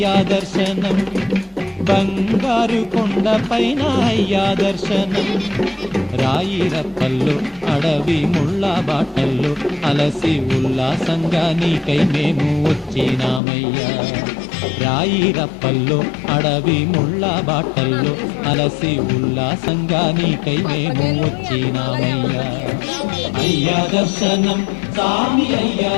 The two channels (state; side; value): drops out; right; at 13.4 s